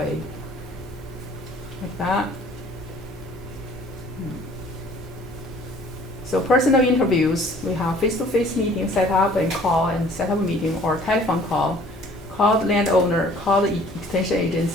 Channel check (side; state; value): both; normal; correlation 0.54